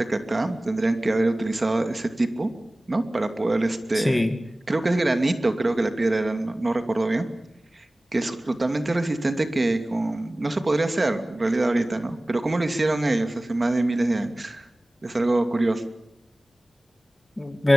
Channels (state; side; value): normal; both; correlation 0.98